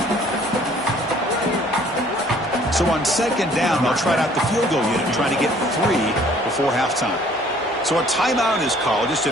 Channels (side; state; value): both; normal; correlation 0.57